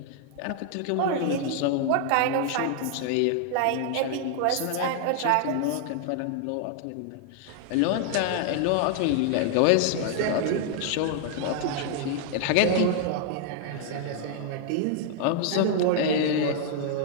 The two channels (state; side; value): different; both; correlation 0.00